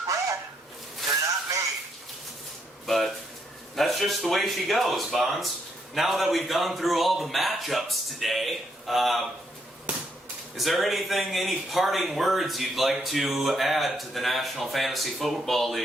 bred. They're not made. But that's just the way she goes, Bahns. Now that we've gone through all the matchups today, is there any parting words you'd like to add to the National Fantasy Football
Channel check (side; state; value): both; normal; correlation 0.75